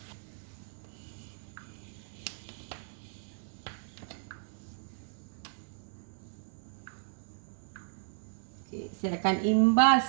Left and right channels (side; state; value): left; silent; 55 dB below the other